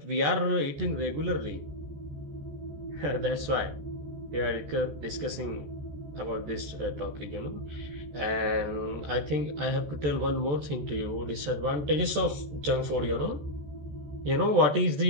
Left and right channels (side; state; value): left; late; 14 ms